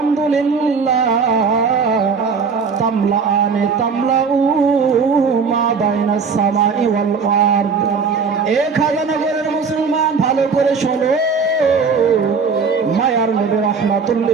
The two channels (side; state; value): left; quieter; 5.3 dB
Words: তামলাআনে তামলাউ মা বাইনাস সামাই ওয়াল আরদ। এক হাজারনগরের মুসলমান ভালো করে শোনো, মায়ার নবী রাহমাতুল